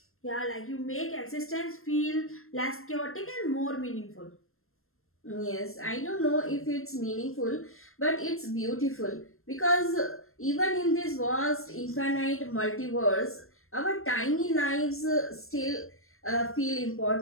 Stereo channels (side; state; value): right; late; 0.62 ms